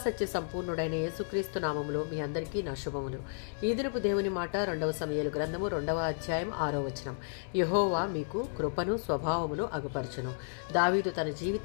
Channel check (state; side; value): silent; right; 56 dB below the other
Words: సంపూర్ణుడైన యేసుక్రీస్తు నామములో మీ అందరికీ నా శుభములు. ఈ దినపు దేవుని మాట 2వ సమూయేలు గ్రంథము 2వ అధ్యాయం 6వ వచనం. యెహోవా మీకు కృపను స్వభావమును అగుపరచును. దావీదు తన